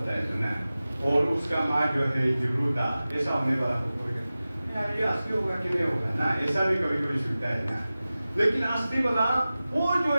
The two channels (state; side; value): inverted; both; correlation -0.96